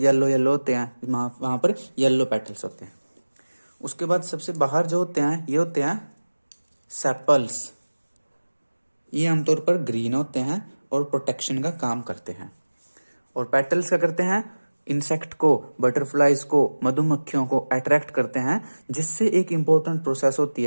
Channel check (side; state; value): both; inverted; correlation -1.00